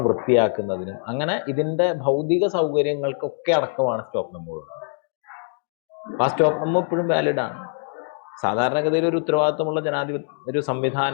വൃത്തിയാക്കുന്നതിനും, അങ്ങനെ ഇതിൻ്റെ ഭൗതിക സൗകര്യങ്ങൾക്കൊക്കെ അടക്കമാണ് സ്റ്റോപ്പ് മെമ്മോ. അപ്പോൾ ആ സ്റ്റോപ്പ് മെമ്മോ ഇപ്പോഴും വാലിഡാണ്. സാധാരണഗതിയിൽ ഒരു ഉത്തരവാദിത്വമുള്ള ഒരു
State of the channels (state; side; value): silent; right; digital silence